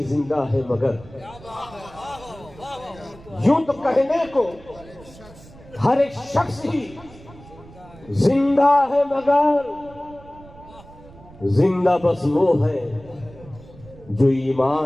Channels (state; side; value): noise; right; rumble, 21 dB below the sound